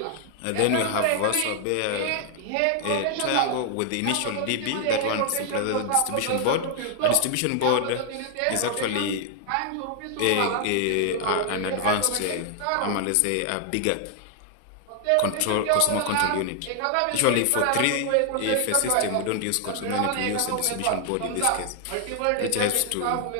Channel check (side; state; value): both; different; correlation 0.00